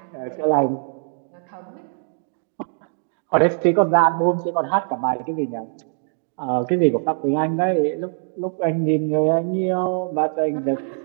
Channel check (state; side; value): silent; left; 59 dB below the other